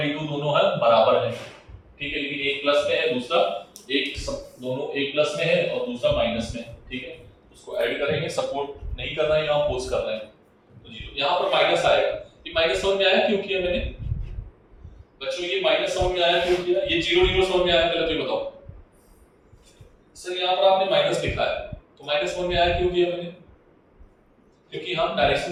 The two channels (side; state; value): both; identical; correlation 1.00